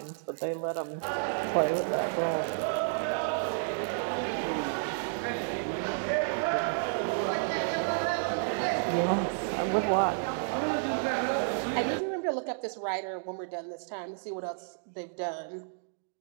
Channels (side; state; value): left; silent; digital silence